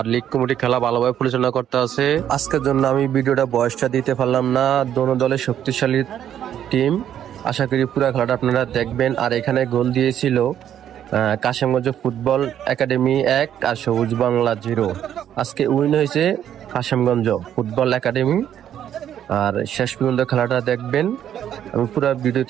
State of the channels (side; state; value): left; quieter; 10.2 dB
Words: লীগ কমিটি খেলা ভালোভাবে পরিচালনা করতে আছে। আজকের জন্য আমি ভিডিওটা বয়সটা দিতে পারলাম না। দোনো দলের শক্তিশালী টিম, আশা করি পুরো খেলাটা আপনারা দেখবেন। আর এখানে গোল দিয়েছিল কাশিমগঞ্জ ফুটবল একাডেমি 1 আর সবুজ বাংলা 0। আজকে উইন হয়েছে কাশিমগঞ্জ ফুটবল একাডেমি। আর শেষ পর্যন্ত খেলাটা দেখবেন। আমি পুরো